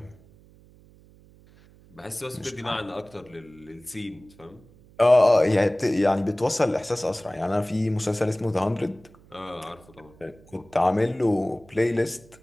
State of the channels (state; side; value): noise; right; hum, 26 dB below the sound